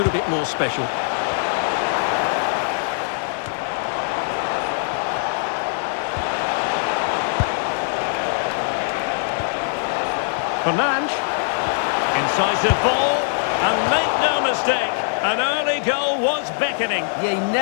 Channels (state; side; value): silent; right; digital silence